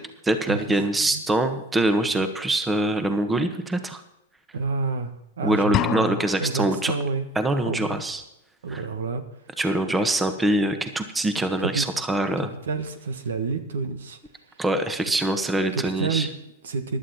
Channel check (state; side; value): normal; both; correlation 0.51